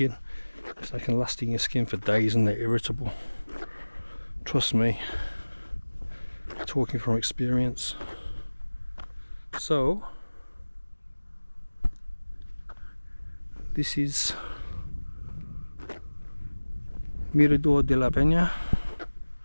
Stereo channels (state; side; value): inverted; both; correlation -1.00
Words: because they can last in your skin for days and they're irritable. Trust me, talking from experience. So this is Mirador de La Peña